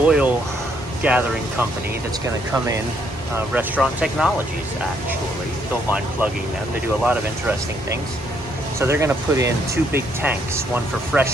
gathering company that's going to come in, Restaurant Technologies, actually. Don't mind plugging them. They do a lot of interesting things. So they're going to put in 2 big tanks, one for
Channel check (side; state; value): both; normal; correlation 0.71